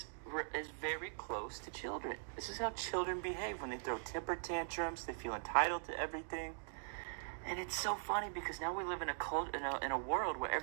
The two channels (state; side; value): silent; left; digital silence